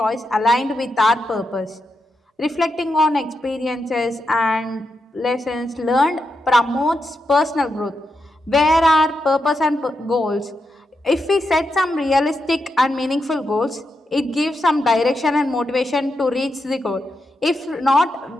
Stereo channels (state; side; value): normal; both; correlation 0.85